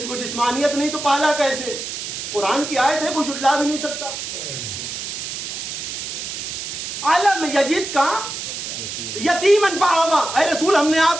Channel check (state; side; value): noise; right; hiss, 6 dB below the sound